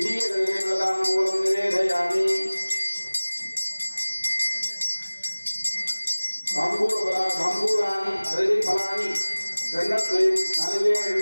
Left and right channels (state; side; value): inverted; both; correlation -1.00